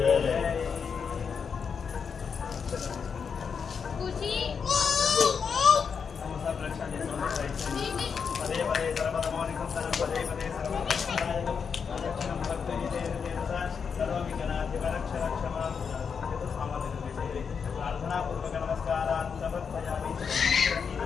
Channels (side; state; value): right; quieter; 6.2 dB